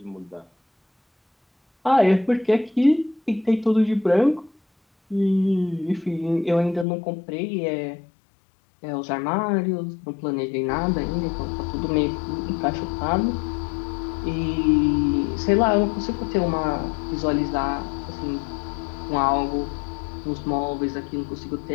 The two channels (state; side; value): drops out; right; at 6.9 s